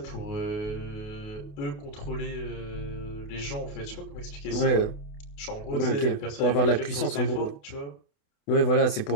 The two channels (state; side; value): late; right; 28 ms